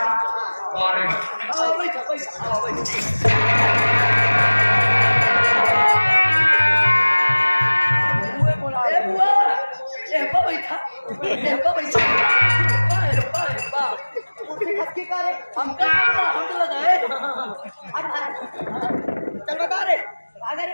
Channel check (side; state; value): both; inverted; correlation -1.00